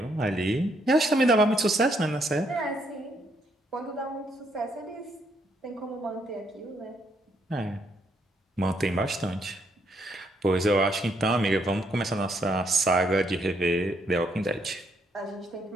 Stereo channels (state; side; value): normal; both; correlation 0.73